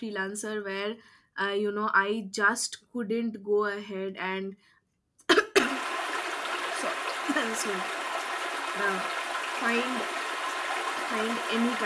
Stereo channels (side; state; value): both; identical; correlation 1.00